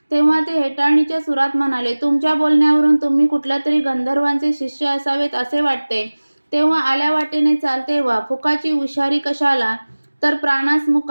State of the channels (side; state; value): both; inverted; correlation -1.00